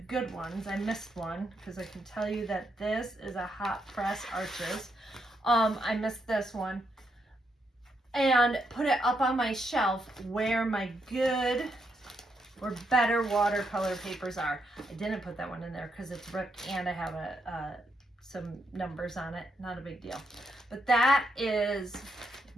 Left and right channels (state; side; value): normal; both; correlation 0.79